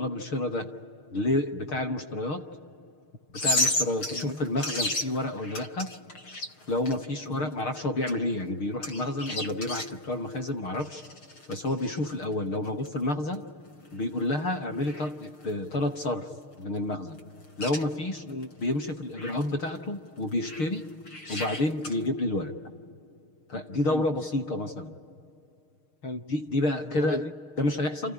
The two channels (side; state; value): right; late; 6.5 ms